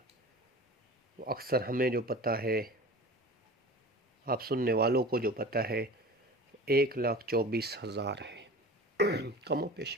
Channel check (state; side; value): normal; both; correlation 0.37